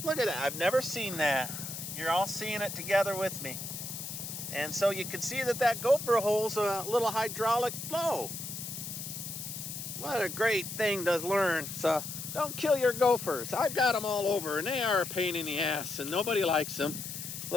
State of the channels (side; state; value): left; noise; hiss, 7 dB below the sound